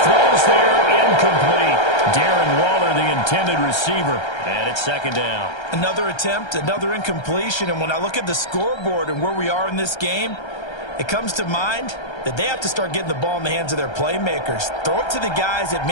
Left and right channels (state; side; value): late; right; 1.3 ms